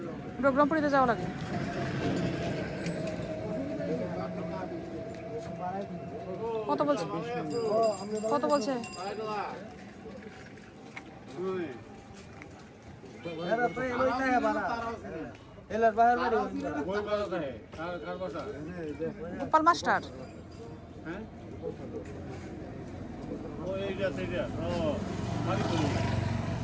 রঘুরামপুরিতে যাওয়া লাগে কত বলছে কত বলছে গোপাল মাস্টার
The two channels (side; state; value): both; identical; correlation 1.00